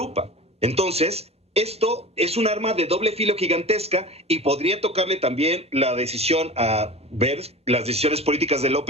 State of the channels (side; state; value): both; normal; correlation 0.35